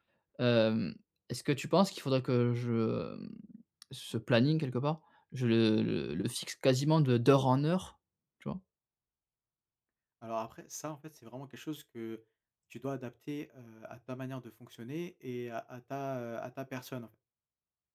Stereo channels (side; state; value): both; identical; correlation 1.00